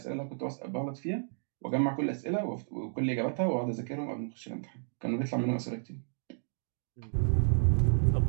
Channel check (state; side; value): silent; left; digital silence